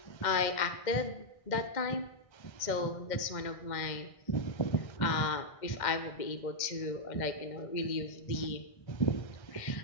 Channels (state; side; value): late; right; 2.1 ms